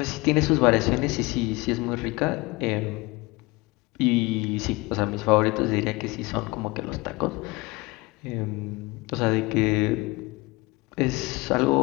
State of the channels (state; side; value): quieter; right; 23.8 dB